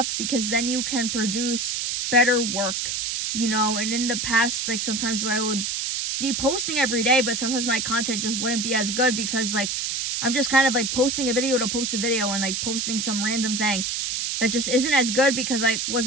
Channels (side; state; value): right; noise; hiss, 1 dB below the sound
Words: because then you can produce better work, you know. And in the past, like sometimes I would be posting every day, but sometimes my content just wouldn't be as good because like I'm just kind of like posting a video to post a video and like posting some random thing that just isn't as good because I